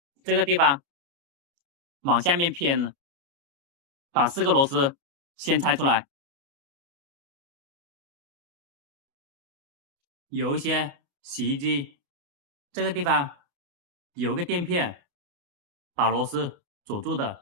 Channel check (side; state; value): left; late; 29 ms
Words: 这个地方往下面偏了。把4个螺丝先拆出来。有一些洗衣机这个地方有个垫片把螺丝锁住